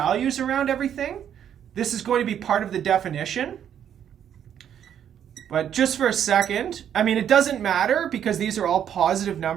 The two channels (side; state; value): left; quieter; 9.4 dB